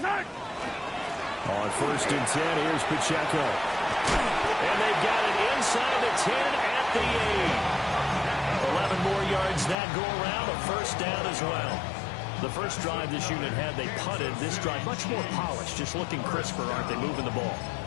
1st and 10, here's Pacheco. And they've got it inside the 10 at the 8. 7 more yards that go around, a first down as well. The first drive this unit had, they punted. This drive, much more polished, just looking crisper, aren't they, moving the ball?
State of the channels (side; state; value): right; drops out; at 9.8 s